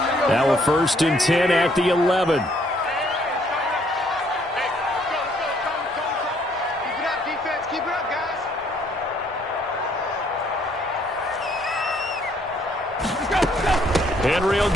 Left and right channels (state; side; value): normal; both; correlation 0.65